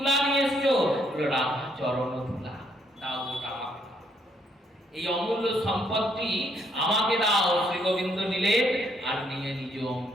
নিয়ে এসছো? বললো রাধা চরণ ধুলা। দাও ওটা আমাকে দাও, এই অমূল্য সম্পদটি আমাকে দাও। শ্রী গোবিন্দ নিলেন আর নিয়ে নিজ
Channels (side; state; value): both; normal; correlation 0.71